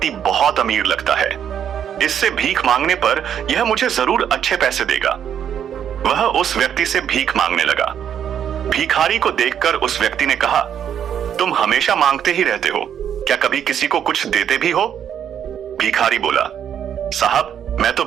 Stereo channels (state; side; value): quieter; left; 9.0 dB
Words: बहुत अमीर लगता है, इससे भीख मांगने पर यह मुझे जरूर अच्छे पैसे देगा। वह उस व्यक्ति से भीख मांगने लगा। भिखारी को देखकर उस व्यक्ति ने कहा, तुम हमेशा मांगते ही रहते हो, क्या कभी किसी को कुछ देते भी हो? भिखारी बोला, साहब मैं तो